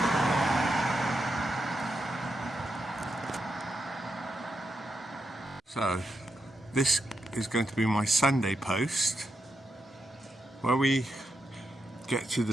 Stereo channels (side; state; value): both; normal; correlation 0.85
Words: So this is going to be my Sunday post, where we get to the